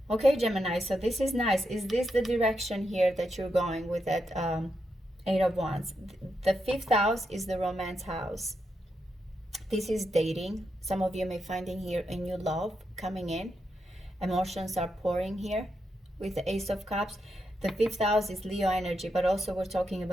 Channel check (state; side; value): normal; both; correlation 0.84